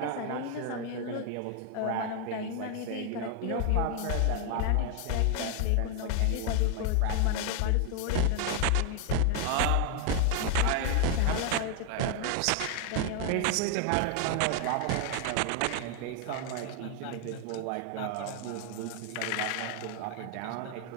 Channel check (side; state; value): both; different; correlation 0.00